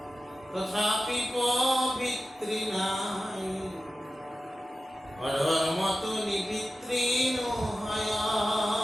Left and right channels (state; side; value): normal; both; correlation 0.94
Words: তথাপি পবিত্ৰী নাই, অধৰ্মটো নিবিত্ৰী নহয়,